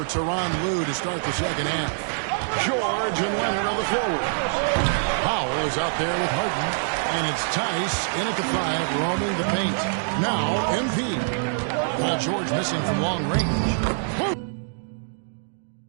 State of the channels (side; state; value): left; silent; digital silence